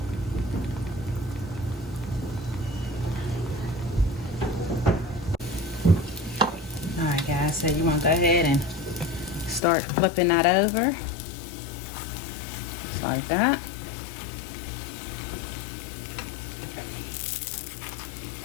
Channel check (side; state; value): right; drops out; at 9.6 s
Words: So you want to go ahead and start flipping that over, just like that.